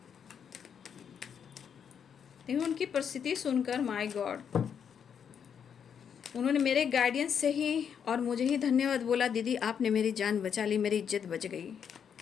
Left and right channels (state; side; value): quieter; right; 7.7 dB